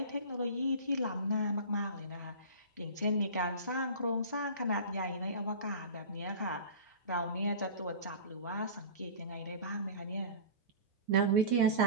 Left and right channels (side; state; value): both; inverted; correlation -0.35